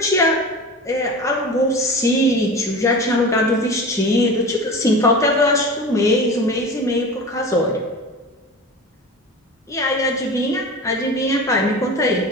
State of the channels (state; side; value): normal; both; correlation 0.33